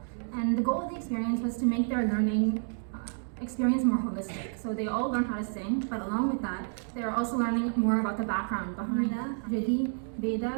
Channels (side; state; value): left; silent; 56 dB below the other